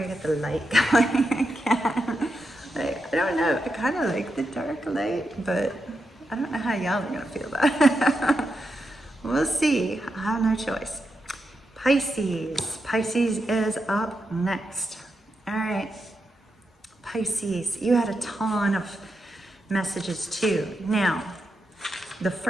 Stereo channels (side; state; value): both; normal; correlation 0.86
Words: can get the light going again. I don't know. I kind of like the dark light, but I don't know how y'all are going to feel about it. We'll see. I have no choice. Pisces. Pisces is up next. All right. Pisces, you had a ton of messages too. Now, the